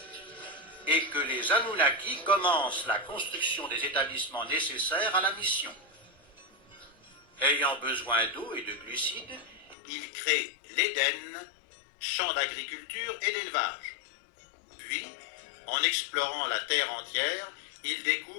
et que les Anunnaki commencent la construction des établissements nécessaires à la mission. Ayant besoin d'eau et de glucides, ils créent l'Éden, champ d'agriculture et d'élevage. Puis, en explorant la terre entière, ils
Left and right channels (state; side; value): drops out; right; at 9.8 s